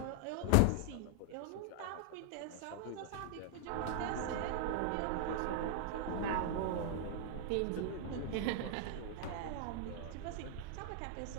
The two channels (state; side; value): different; both; correlation -0.01